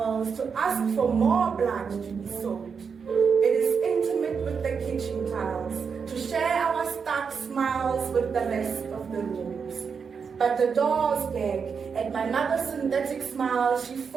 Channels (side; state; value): left; quieter; 6.0 dB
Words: to ask for more blood to be sold. It is intimate with the kitchen tiles to share our stark smiles with the rest of the rooms. But the doors gag at my mother's synthetic smile she